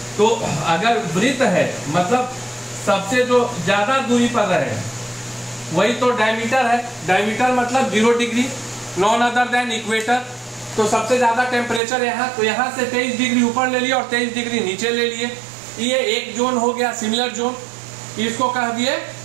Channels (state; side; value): drops out; left; at 11.8 s